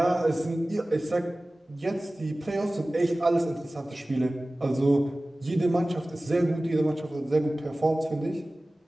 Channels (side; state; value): both; normal; correlation 0.97